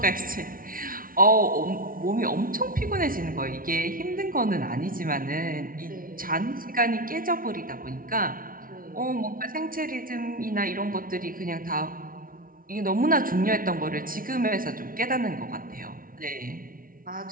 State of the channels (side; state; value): left; late; 0.41 ms